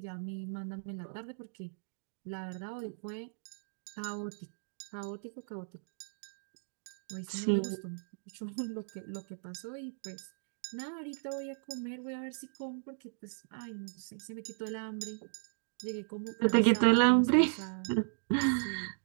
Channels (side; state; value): left; silent; digital silence